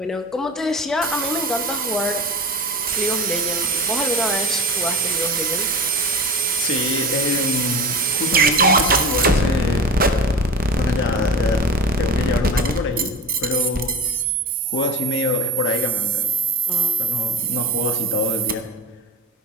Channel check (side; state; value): both; normal; correlation 0.30